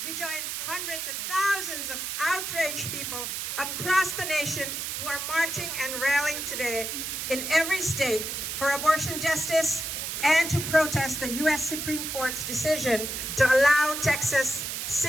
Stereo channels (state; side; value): noise; right; hiss, 4 dB below the sound